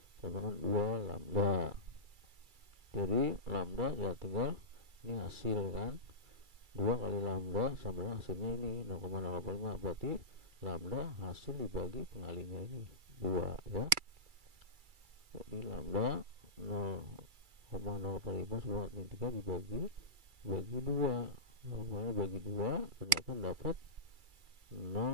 sama dengan 2 lambda. Jadi lambda ya tinggal ini hasil kan, 2 kali lambda sama dengan hasilnya ini 0,085, berarti lambda hasil dibagi pengalinya ini 2 ya. Jadi lambda 0,085 10 min 3 dibagi 2, normalnya bagi 2 ternyata dapat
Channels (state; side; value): late; left; 2.3 ms